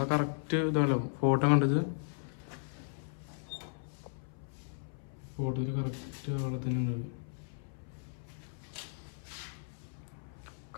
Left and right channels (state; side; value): silent; right; 54 dB below the other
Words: കറക്റ്റ് ഇതാണല്ലോ ഫോട്ടോ കണ്ടത്. ഫോട്ടോയിൽ കറക്റ്റ് ആളെ തന്നെ ഉണ്ട്.